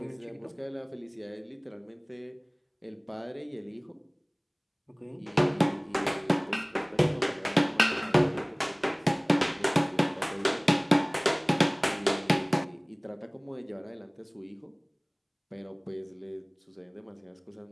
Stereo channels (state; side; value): identical; both; correlation 1.00